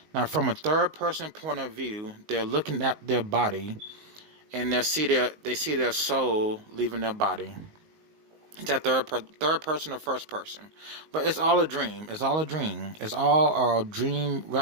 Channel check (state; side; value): late; left; 19 ms